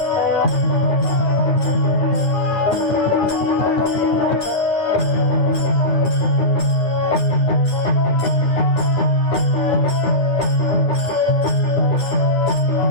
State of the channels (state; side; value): late; right; 9.4 ms